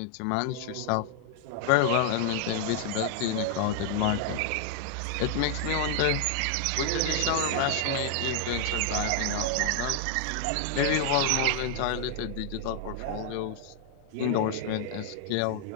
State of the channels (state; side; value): different; both; correlation 0.00